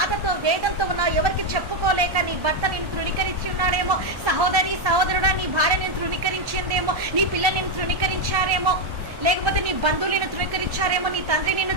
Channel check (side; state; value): left; late; 1.1 ms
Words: వేదంతో ఉన్నావు, ఎవరికి చెప్పుకోలేక నీ భర్త నేను తృణీకరించి ఉన్నాడేమో, సహోదరుడా నీ భార్య నేను తృణీకరించిందేమో, నీ పిల్లలు నేను తృణీకరించారేమో, లేకపోతే నీ బంధువులు నిన్ను తృణీకరించారేమో, నీ తండ్రి